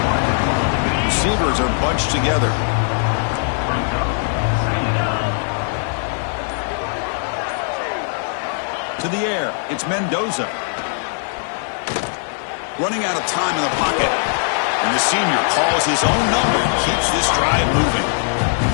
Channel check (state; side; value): silent; right; 62 dB below the other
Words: Receivers are bunched together. To the air, it's Mendoza. Running out of time in the pocket. And the senior calls his own number and keeps this drive moving.